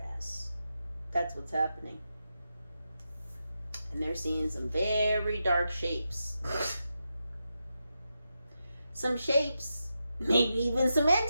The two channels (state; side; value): inverted; both; correlation -0.88